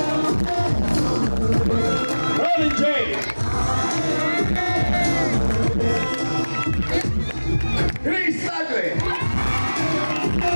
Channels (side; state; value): both; inverted; correlation -1.00